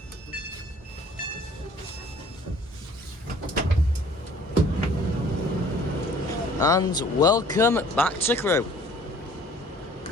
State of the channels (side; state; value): both; normal; correlation 0.53